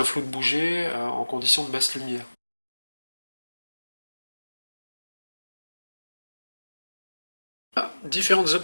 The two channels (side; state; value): both; inverted; correlation -1.00